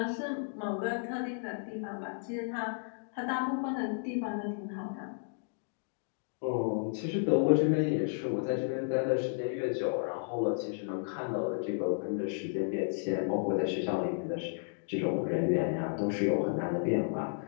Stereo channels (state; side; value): silent; right; digital silence